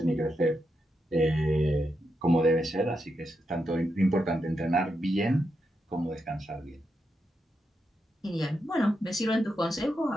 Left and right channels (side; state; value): both; normal; correlation 0.85